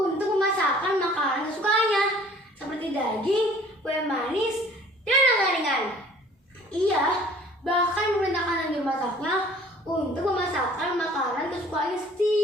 memasakkan makanan kesukaannya, seperti daging, kue manis, dan ringan-ringan. Ia bahkan memerintahkan juru masaknya untuk memasakkan makanan kesukaannya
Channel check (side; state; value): both; normal; correlation 0.52